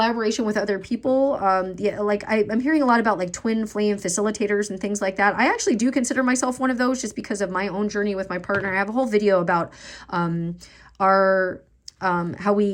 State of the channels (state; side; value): identical; both; correlation 1.00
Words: with other people. Yeah, like I'm hearing a lot about like twin flame facilitators and things like that. I actually do consider myself one of those just because of my own journey with my partner. I have a whole video about our how